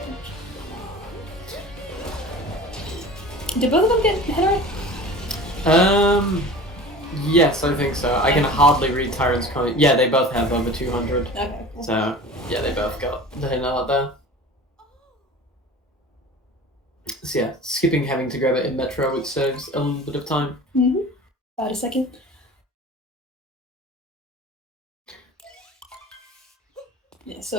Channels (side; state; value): both; normal; correlation 0.39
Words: Did both of them get hit right? Yes, I think so. I can hardly read Tyron's comment. Yeah, they both have over 200. Okay, cool. So, yeah, they both got the hit out there. So yeah, skipping having to grab it in Metro, which saves a little bit of time. Mm-hmm. About a second. Yeah,